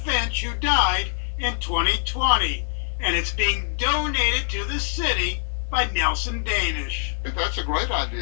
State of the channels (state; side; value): silent; right; digital silence